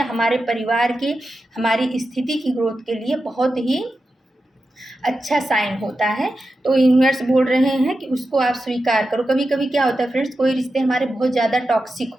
हमारे परिवार की, हमारी स्थिति की ग्रोथ के लिए बहुत ही अच्छा साइन होता है। तो यूनिवर्स बोल रहे हैं कि उसको आप स्वीकार करो। कभी कभी क्या होता है फ्रेंड्स, कोई रिश्ते हमारे बहुत ज़्यादा टॉक्सिक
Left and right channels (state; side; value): normal; both; correlation 0.91